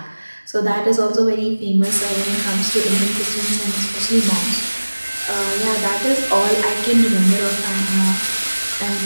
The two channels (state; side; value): inverted; both; correlation -1.00